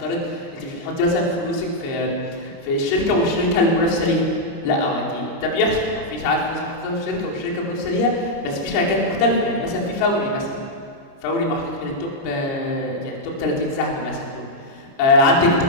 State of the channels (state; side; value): late; right; 30 ms